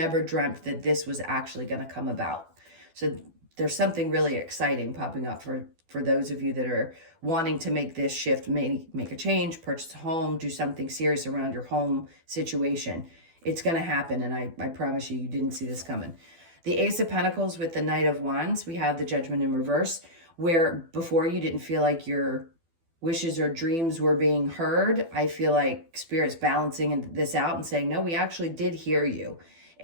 dreamt that this was actually going to come about. So there's something really exciting popping up for those of you that are wanting to make this shift, make a change, purchase a home, do something serious around your home situation. It's going to happen, and I promise you didn't see this coming. The Ace of Pentacles with the Knight of Wands, we have the Judgment in reverse, where before you didn't feel like your wishes or dreams were being heard. I feel like Spirit's balancing this out and saying, no, we actually did hear you.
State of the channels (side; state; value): left; late; 12 ms